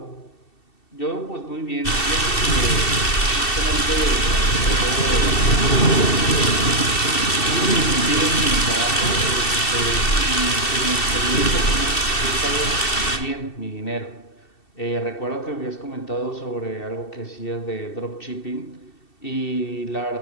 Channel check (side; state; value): right; late; 2.7 ms